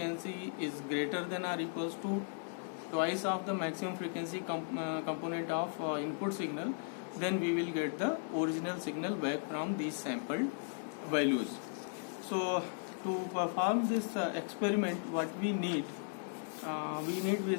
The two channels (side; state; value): right; silent; digital silence